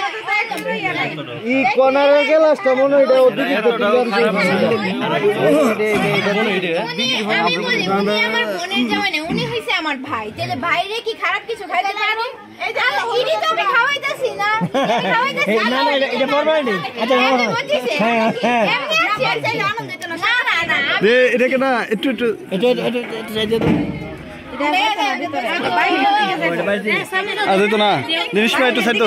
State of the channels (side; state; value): both; identical; correlation 1.00